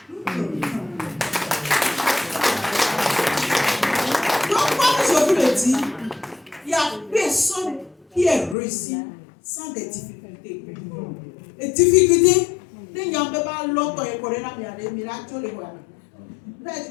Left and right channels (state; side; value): drops out; right; at 8.6 s